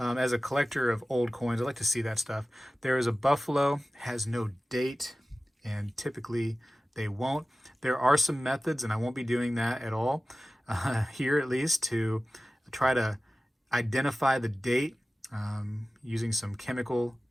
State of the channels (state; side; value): normal; both; correlation 0.96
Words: a collector of old coins, I like to see that stuff. There is a buffalo, has no date, and typically they won't. There are some methods, and I won't be doing that at all here, at least, to try to identify the date using some chemical